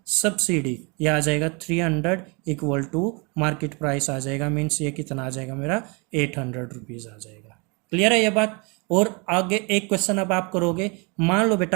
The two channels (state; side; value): quieter; left; 31.1 dB